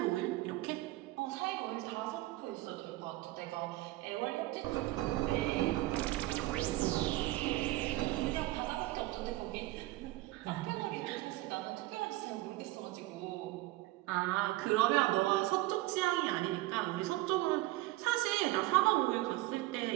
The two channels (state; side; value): quieter; left; 18.4 dB